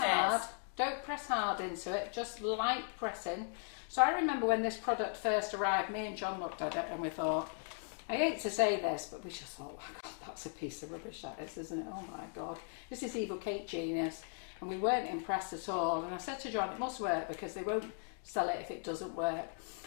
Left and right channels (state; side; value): silent; right; 53 dB below the other